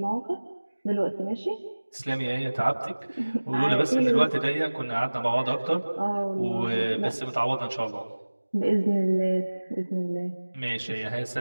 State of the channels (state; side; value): inverted; both; correlation -1.00